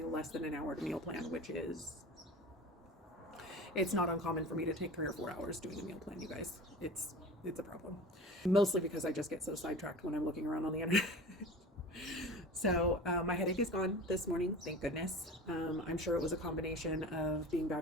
less than an hour to meal plan, which is... It's not uncommon for me to take 3 or 4 hours doing a meal plan, you guys. It's a problem. Mostly because I just get so sidetracked when I'm looking around on the internet. So my headache is gone this morning, thank goodness. I'm sure it was a combination of being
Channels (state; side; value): normal; both; correlation 0.35